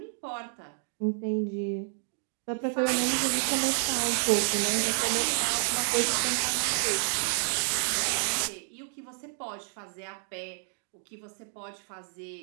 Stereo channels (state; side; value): silent; left; 58 dB below the other